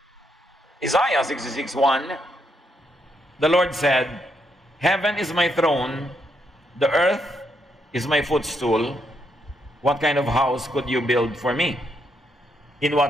Isaiah 66:1, the Lord said, Heaven is my throne, the earth is my footstool. What kind of house could you build for me? In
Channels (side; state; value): both; normal; correlation 0.77